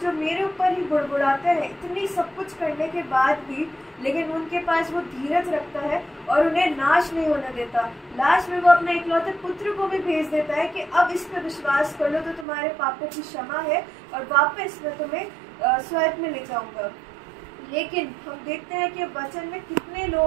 मेरे ऊपर ही बुड़बुड़ाते हैं, इतनी सब कुछ करने के बाद भी, लेकिन उनके पास वो धीरज रखता है और उन्हें नाश नहीं होने देता। लास्ट में वो अपने इकलौते पुत्र को भी भेज देता है कि अब इस पर विश्वास कर लो तो तुम्हारे पापों की क्षमा है और वापस मैं तुम्हें स्वर्ग में ले जाऊंगा। लेकिन हम देखते हैं कि वचन में कितने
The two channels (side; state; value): left; drops out; at 12.5 s